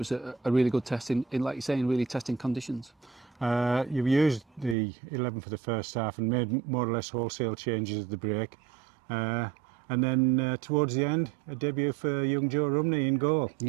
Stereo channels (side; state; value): left; drops out; at 4.8 s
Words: a really good test in, like you're saying, really testing conditions. You've used the 11 for the first half and made more or less wholesale changes at the break. And then towards the end, a debut for young Joe Rumney in goal.